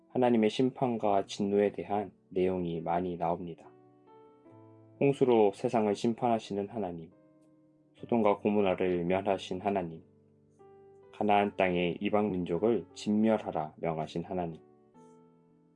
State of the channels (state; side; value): identical; both; correlation 1.00